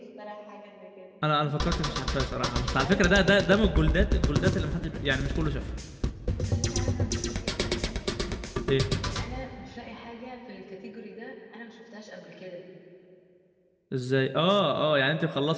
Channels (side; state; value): both; identical; correlation 1.00